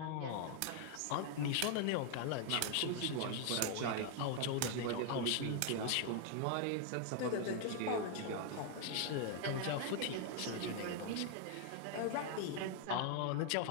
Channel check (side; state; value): both; different; correlation 0.00